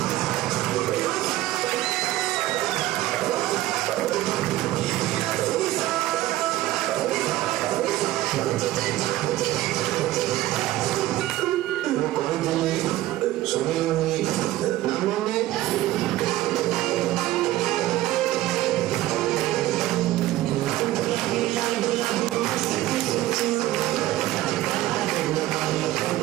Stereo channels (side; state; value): left; quieter; 15.7 dB